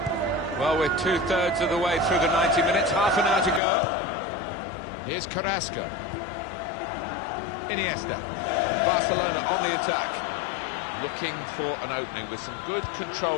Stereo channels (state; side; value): drops out; right; at 3.6 s